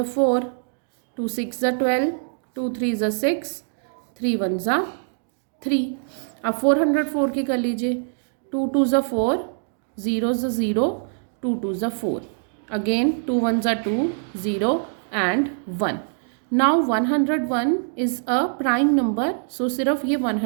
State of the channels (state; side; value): silent; left; digital silence